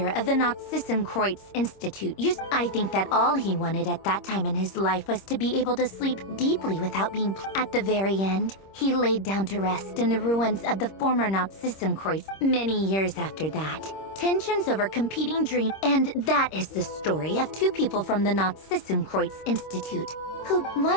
of the Narzissenkreuz Institute used— I think that all he wanted at that time in his life was to be able to sleep deeply without being— At the very end, he laid down to rest in the ruins of the former Narzissenkreuz. Many years after that, tensions over competing dreams— And that is the story of two people from the Narzissenkreuz Institute, who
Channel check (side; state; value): right; late; 26 ms